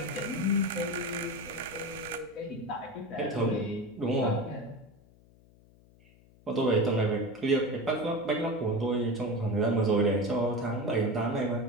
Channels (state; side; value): noise; left; hum, 27 dB below the sound